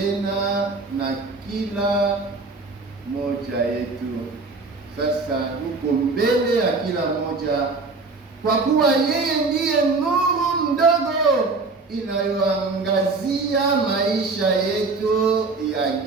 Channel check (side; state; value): left; quieter; 3.8 dB